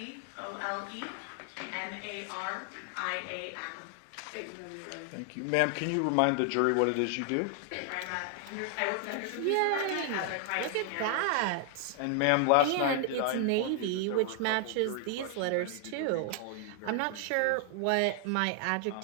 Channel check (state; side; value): different; both; correlation 0.00